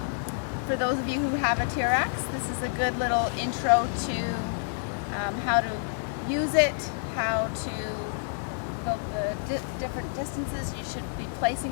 for those of you who have a TRX, this is a good little intro to how to use it, how to go the different distances. You should be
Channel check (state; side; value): silent; right; 59 dB below the other